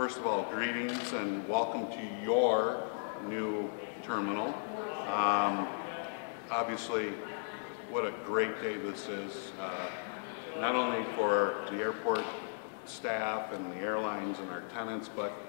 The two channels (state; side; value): silent; right; digital silence